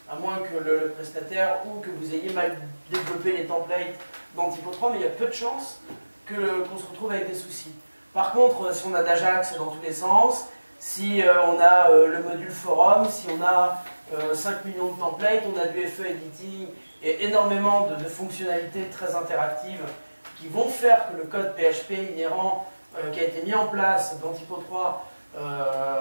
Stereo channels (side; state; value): both; inverted; correlation -1.00